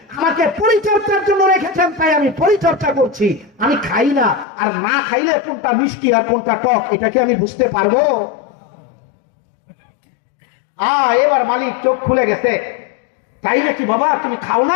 আমাকে পরিচর্যার জন্য রেখেছেন, তাই আমি পরিচর্যা করছি। আমি খাই না, আর না খাইলে কোনটা মিষ্টি আর কোনটা টক এটা কি আমি বুঝতে পারবো? এবার মালিক চোখ খুলে গেছে। তাই নাকি বাবা, তুমি খাও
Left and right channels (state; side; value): drops out; right; at 4.5 s